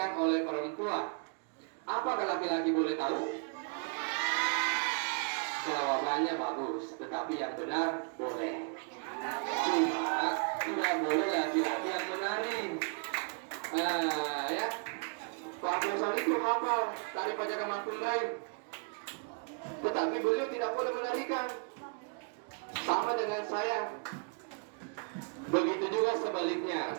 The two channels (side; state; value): left; quieter; 39.1 dB